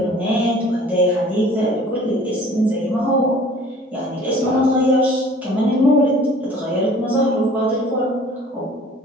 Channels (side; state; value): both; normal; correlation 0.50